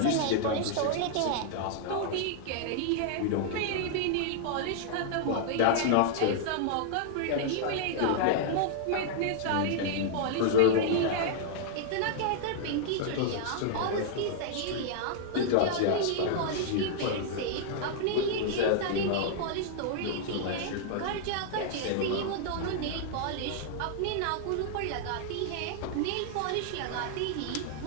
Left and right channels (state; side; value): different; both; correlation -0.01